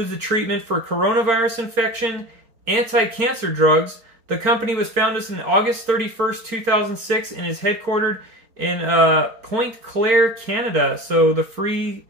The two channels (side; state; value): left; late; 4.4 ms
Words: the treatment for coronavirus infection, anti-cancer drugs. The company was founded on August 31st, 2006, and is headquartered in Pointe Claire, Canada, so the free